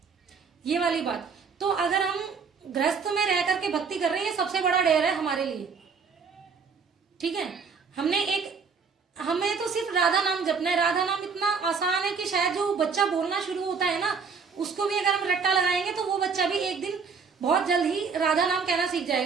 ये वाली बात। तो अगर हम गृहस्थ में रह करके भक्ति कर रहे हैं, सबसे बड़ा डेर है हमारे लिए, ठीक है। हमें तो सिर्फ राधा नाम जपना है। राधा नाम इतना आसान है कि शायद जो बच्चा बोलना शुरू होता है ना, उसको भी अगर हम रट्टा लगाएंगे तो वो बच्चा भी एक दिन बहुत जल्द ही राधा नाम कहना सीख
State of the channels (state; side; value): quieter; left; 5.5 dB